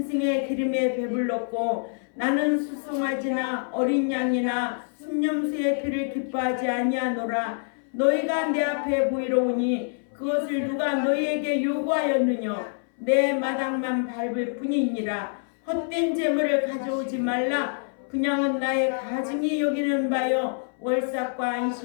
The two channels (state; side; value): silent; right; 61 dB below the other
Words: 기름에 배불렀고 나는 수송아지나 어린 양이나 순념수의 피를 기뻐하지 아니하노라. 너희가 내 앞에 보이러 오니 그것을 누가 너희에게 요구하였느냐. 내 마당만 밟을 뿐이니라. 헛된 재물을 가져오지 말라. 그냥은 나의 가증이 여기는 바요 월삭과